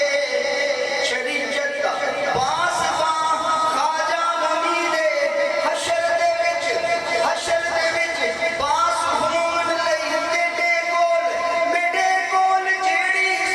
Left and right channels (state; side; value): identical; both; correlation 1.00